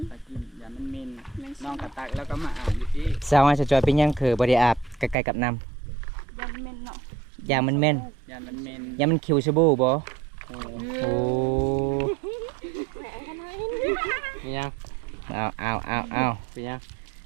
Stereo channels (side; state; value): left; drops out; at 5.2 s